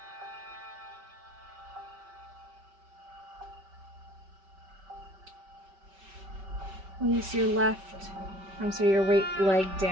Release your your right leg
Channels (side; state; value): left; late; 5.2 ms